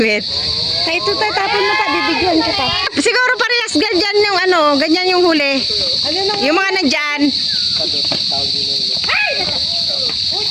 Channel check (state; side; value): identical; both; correlation 1.00